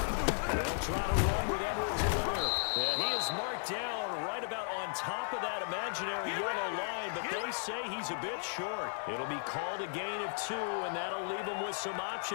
try to run with Edwards-Helaire. And he is marked down right about on top of that imaginary yellow line, but they say he's a bit short. It'll be called a gain of 2, and that'll leave them with some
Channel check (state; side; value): silent; right; digital silence